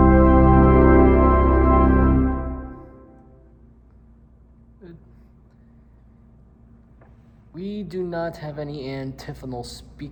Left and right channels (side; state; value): both; identical; correlation 1.00